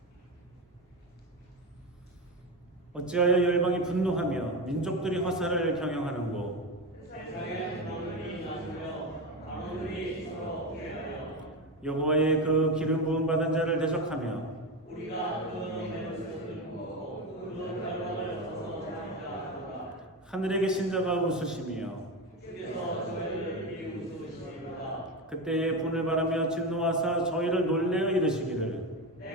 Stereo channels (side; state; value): both; normal; correlation 0.18